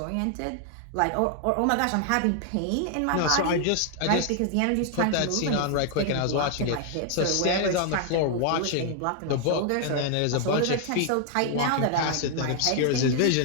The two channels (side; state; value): both; different; correlation 0.00